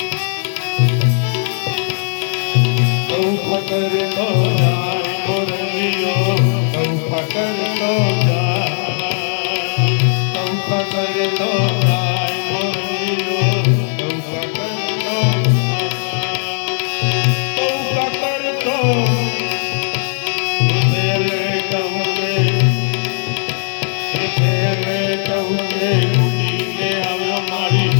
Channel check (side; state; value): right; silent; 66 dB below the other